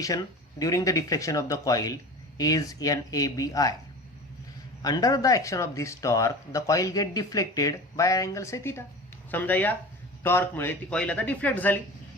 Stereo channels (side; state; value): both; normal; correlation 0.35